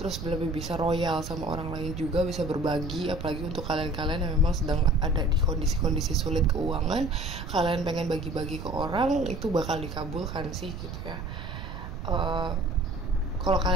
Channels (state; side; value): noise; right; rumble, 8 dB below the sound